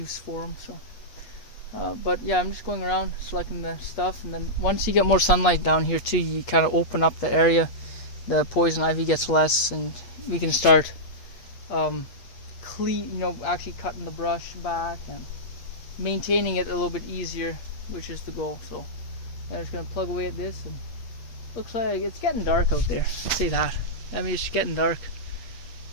for them. So, but yeah, I'm just going around selecting the stuff, and then once you get more sunlight down here too, you kind of open up the area. The poison ivy gets less, and we can start actually cutting the brush back and maintaining it a little bit easier, which is the goal. So I'm just going to plug away at this, and looks like it's getting dark out there. I'll say that. I mean, it's getting dark.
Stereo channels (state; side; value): late; right; 8.5 ms